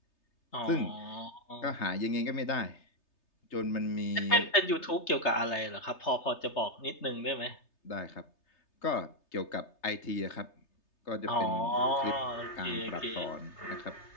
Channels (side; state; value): right; late; 3.3 ms